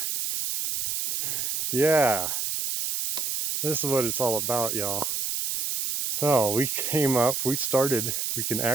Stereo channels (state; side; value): noise; right; hiss, 1 dB below the sound